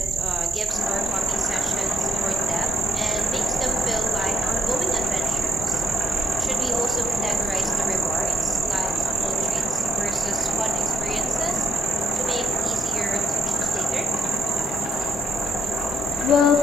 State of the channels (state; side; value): normal; both; correlation 0.69